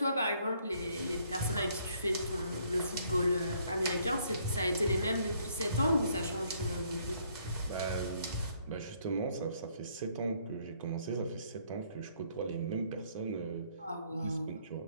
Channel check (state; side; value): inverted; both; correlation -0.66